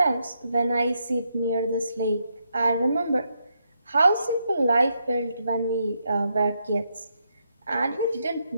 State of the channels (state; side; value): inverted; both; correlation -0.80